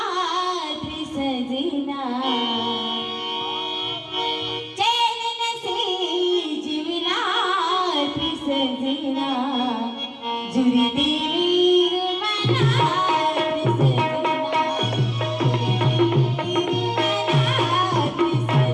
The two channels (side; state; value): both; identical; correlation 1.00